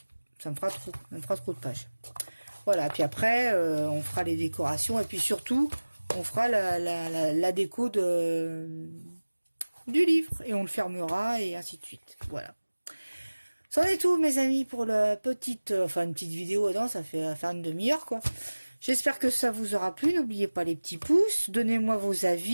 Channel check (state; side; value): inverted; both; correlation -1.00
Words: me fera trop de pages. Voilà, puis après, on fera les décorations, et puis surtout, on fera la déco du livre, et on le fermera, et ainsi de suite. Voilà. C'en est tout, mes amis, pour la petite, une petite vidéo. Non, ça fait faire une demi-heure, quoi. J'espère que ça vous aura plu. N'oubliez pas les petits pouces. Donnez-moi vos